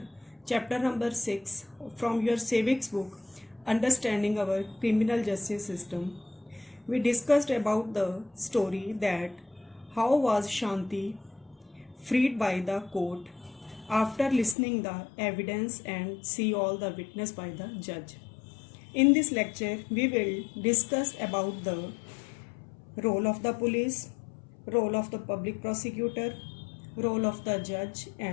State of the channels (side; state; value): right; drops out; at 14.6 s